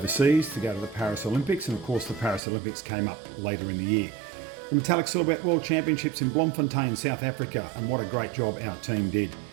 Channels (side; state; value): left; drops out; at 2.4 s